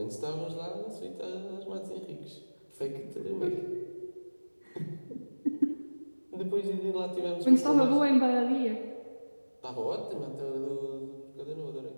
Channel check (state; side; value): inverted; both; correlation -1.00